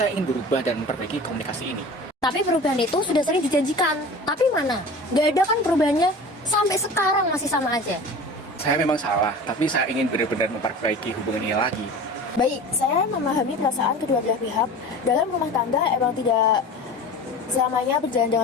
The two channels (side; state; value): both; normal; correlation 0.37